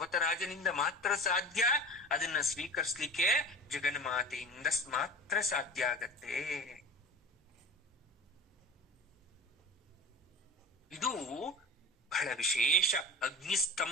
ಮಾತ್ರ ಸಾಧ್ಯ. ಅದನ್ನ ಸ್ವೀಕರಿಸ್ಲಿಕ್ಕೆ ಜಗನ್ಮಾತೆಯಿಂದ ಮಾತ್ರ ಸಾಧ್ಯ ಆಗತ್ತೆ. ಇದು ಬಹಳ ವಿಶೇಷ.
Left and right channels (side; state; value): both; normal; correlation 0.34